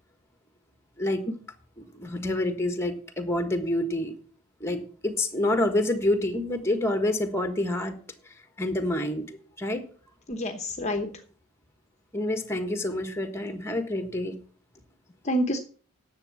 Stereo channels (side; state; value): both; normal; correlation 0.64